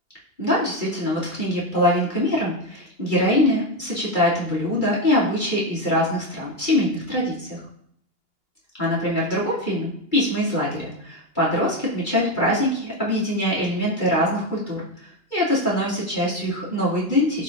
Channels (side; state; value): right; late; 2.8 ms